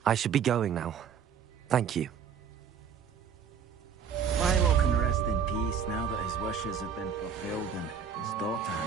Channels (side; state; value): left; quieter; 7.1 dB